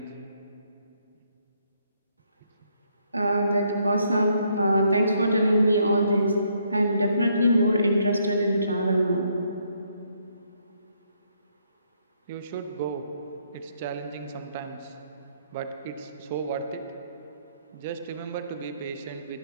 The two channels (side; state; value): both; inverted; correlation -0.72